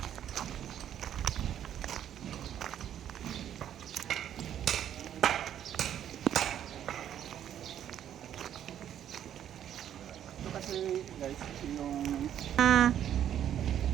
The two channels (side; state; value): left; quieter; 10.2 dB